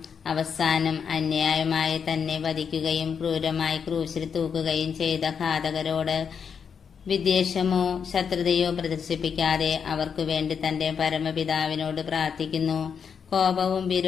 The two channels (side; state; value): right; quieter; 6.8 dB